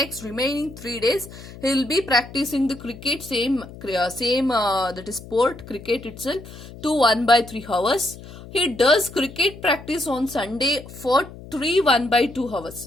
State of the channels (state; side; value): noise; left; hum, 16 dB below the sound